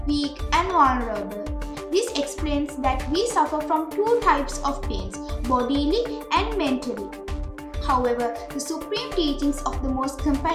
weak and vulnerable. This explains that we suffer from two types of pains, bodily and mentally. However, the supreme teachings of the most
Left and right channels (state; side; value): identical; both; correlation 1.00